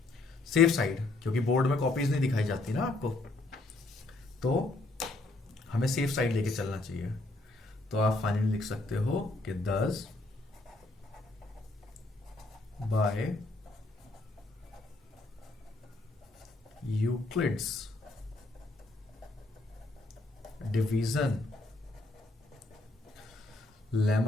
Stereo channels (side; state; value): right; quieter; 3.0 dB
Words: सेफ साइड, क्योंकि बोर्ड में कॉपीज नहीं दिखाई जाती ना आपको, तो हमें सेफ साइड लेके चलना चाहिए. तो आप फाइनली लिख सकते हो कि 10 by Euclid's division